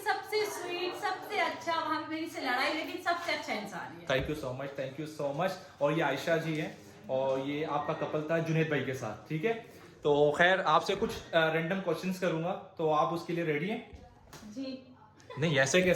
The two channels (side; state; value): both; identical; correlation 1.00